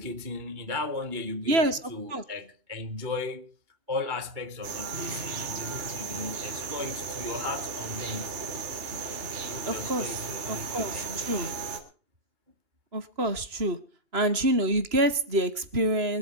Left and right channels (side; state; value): left; late; 3.0 ms